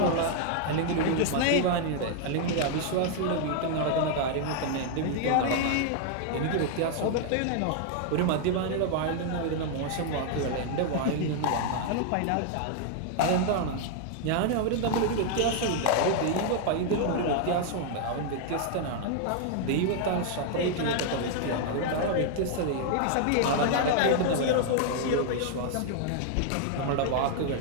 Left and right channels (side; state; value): both; different; correlation 0.00